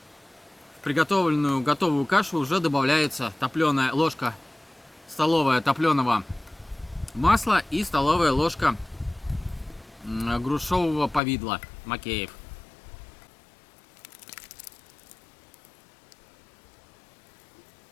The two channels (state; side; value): drops out; right; at 11.2 s